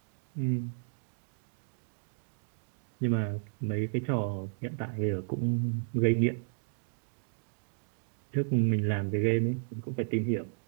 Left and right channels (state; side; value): silent; left; digital silence